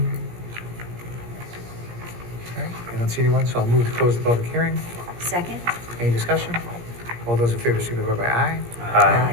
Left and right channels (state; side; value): late; left; 17 ms